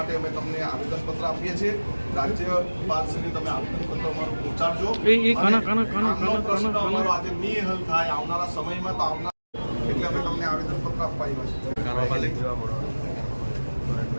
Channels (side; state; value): both; inverted; correlation -1.00